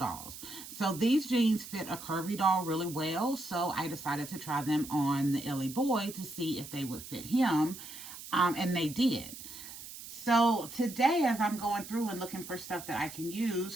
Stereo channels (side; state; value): right; noise; hiss, 13 dB below the sound